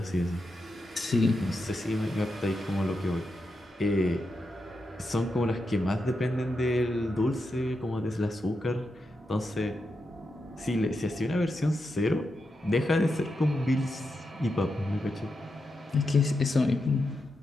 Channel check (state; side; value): normal; both; correlation 0.87